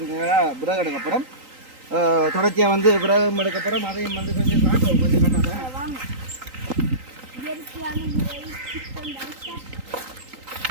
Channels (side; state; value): left; late; 3.8 ms